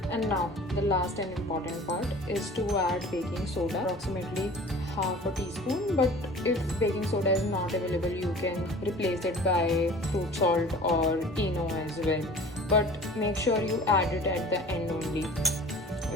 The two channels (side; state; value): both; normal; correlation 0.43